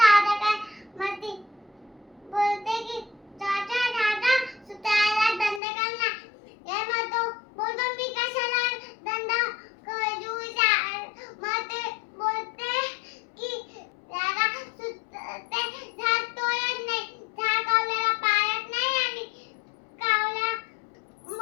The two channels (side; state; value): right; drops out; at 5.6 s